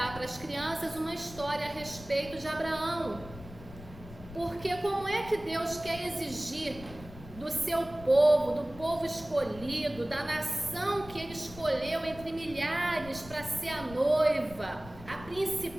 para as crianças uma história a respeito de Abraão. Porque como é que Deus quer exigir do seu povo, do povo escolhido, da nação que ele escolheu entre milhares para ser a noiva, a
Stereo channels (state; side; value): noise; left; rumble, 16 dB below the sound